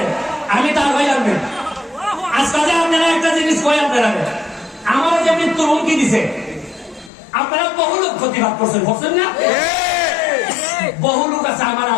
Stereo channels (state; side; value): drops out; right; at 7.1 s